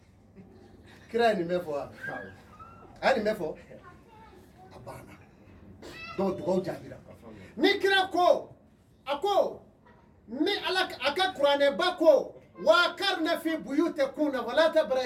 kira ni mefo ani mefo abana do do jabira ni kira ko ako ni alak aka qur'ane bako wa karna fi buyutikuna wala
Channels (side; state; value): both; identical; correlation 1.00